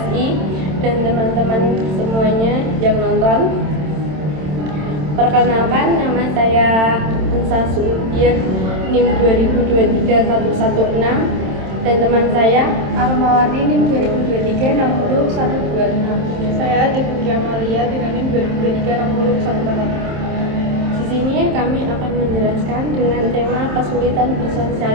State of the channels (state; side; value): late; left; 27 ms